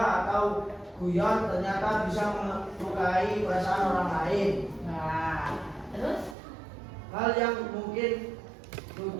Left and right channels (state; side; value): drops out; left; at 6.4 s